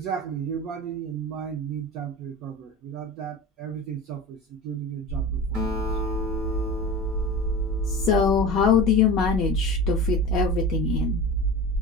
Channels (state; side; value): normal; both; correlation 0.32